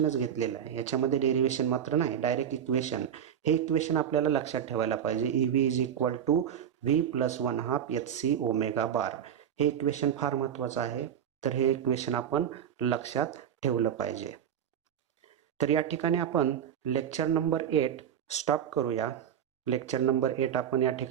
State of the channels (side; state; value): left; quieter; 9.0 dB